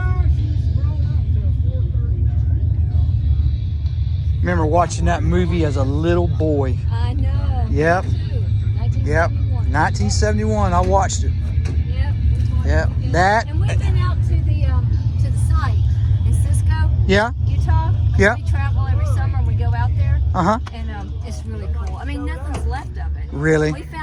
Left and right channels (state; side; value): identical; both; correlation 1.00